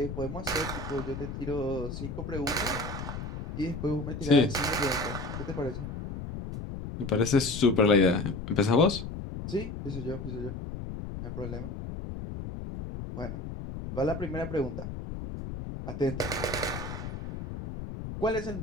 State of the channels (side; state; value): left; noise; rumble, 7 dB below the sound